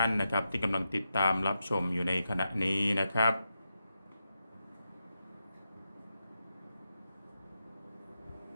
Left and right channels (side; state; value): both; inverted; correlation -0.88